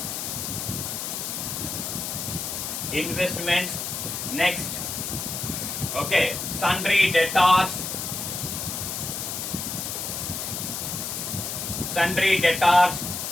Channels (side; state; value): left; noise; hiss, 4 dB below the sound